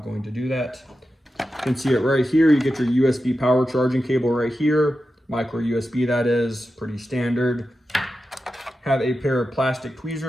going to do that. You can see it right here. You get your USB power charging cable right here. Micro USB, that is, pretty standard. Have a pair of plastic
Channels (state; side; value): normal; both; correlation 0.91